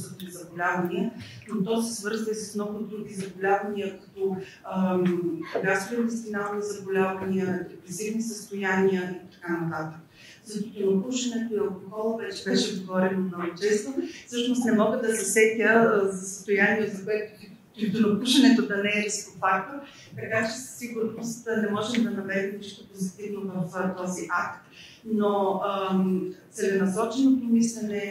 заболявания, но то се свързва и с много други заболявания, като гастроинтестинални заболявания, депресивни състояния и така нататък. За тютюнопушенето и алкохола вече беше говорено много често. Всъщност не мога да се сетя за състояние, за което тютюнопушенето да не е рисков фактор, така че със сигурност не можем да намерим нищо позитивно в този акт. Но целенасоченото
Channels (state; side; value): identical; both; correlation 1.00